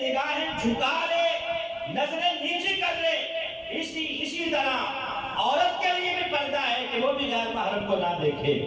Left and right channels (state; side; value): identical; both; correlation 1.00